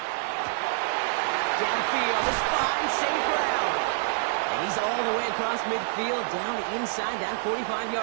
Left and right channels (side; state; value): left; silent; 60 dB below the other